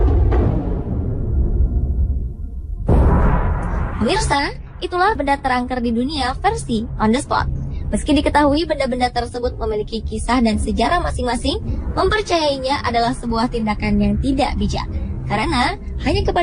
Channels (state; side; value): identical; both; correlation 1.00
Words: Pemirsa, itulah benda terangker di dunia versi on the spot. Meski diketahui benda-benda tersebut memiliki kisah dan sejarah masing-masing, mempercayainya adalah sebuah tindakan yang tidak bijak. Karena hanya